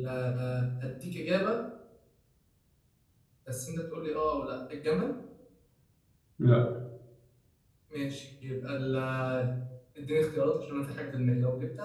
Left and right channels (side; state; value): both; identical; correlation 1.00